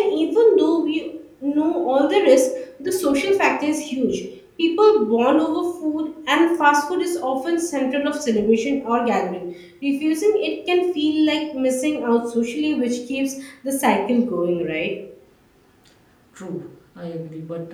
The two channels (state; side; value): identical; both; correlation 1.00